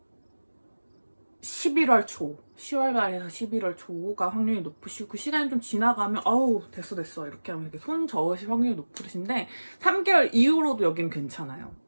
11월 초, 10월 말에서 11월 초가 확률이 높으시고, 시간이 좀 지나가면 됐어 이렇게 하면 이렇게 손 저으실 확률이 높으신데 3개월 이후로도 여기는 괜찮아요.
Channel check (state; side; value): inverted; both; correlation -1.00